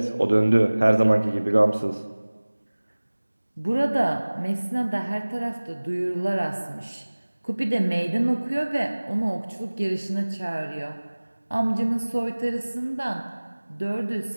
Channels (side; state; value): both; inverted; correlation -1.00